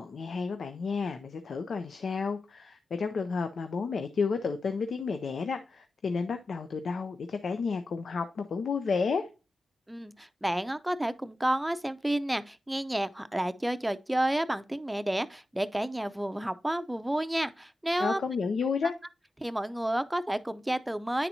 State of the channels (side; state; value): both; normal; correlation 0.92